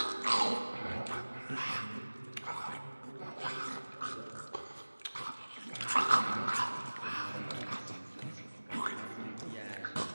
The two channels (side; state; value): both; inverted; correlation -1.00